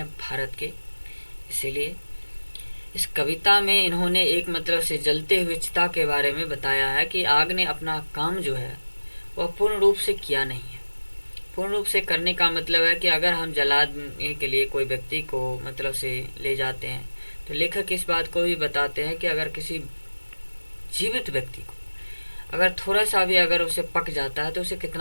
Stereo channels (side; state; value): both; inverted; correlation -1.00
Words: भारत के। इसीलिए इस कविता में इन्होंने एक मतलब से जलते हुए चिता के बारे में बताया है कि आग ने अपना काम जो है वह पूर्ण रूप से किया नहीं है। पूर्ण रूप से करने का मतलब है कि अगर हम जलाने के लिए कोई व्यक्ति को मतलब से ले जाते हैं, तो लेखक इस बात को भी बताते हैं कि अगर किसी जीवित व्यक्ति को अगर थोड़ा सा भी अगर उसे पक जाता है तो उसे